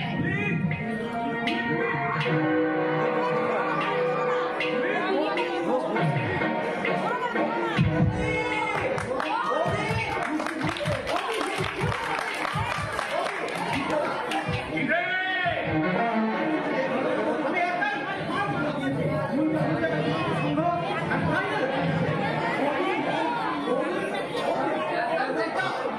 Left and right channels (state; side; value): identical; both; correlation 1.00